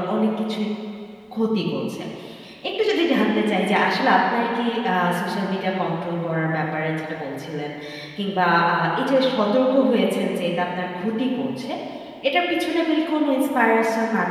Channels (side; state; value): both; identical; correlation 1.00